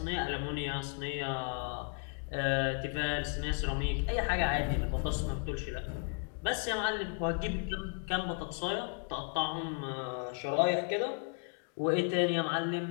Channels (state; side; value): quieter; right; 37.8 dB